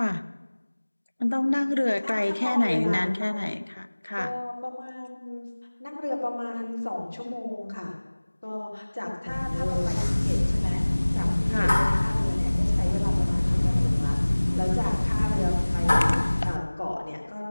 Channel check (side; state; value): both; inverted; correlation -1.00